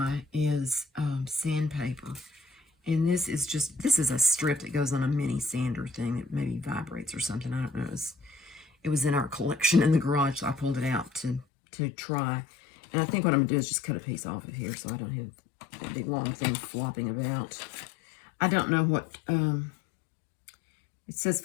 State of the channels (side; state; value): right; drops out; at 11.5 s